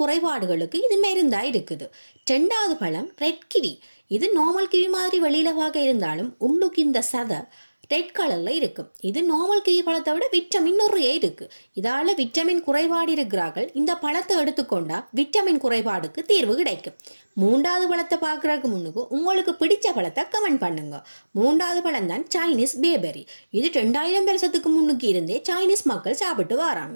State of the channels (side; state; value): both; inverted; correlation -1.00